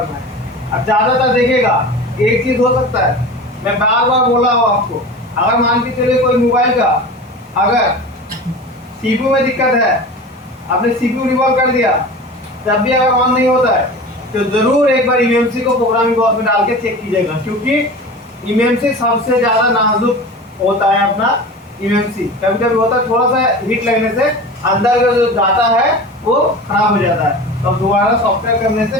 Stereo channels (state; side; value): normal; both; correlation 0.34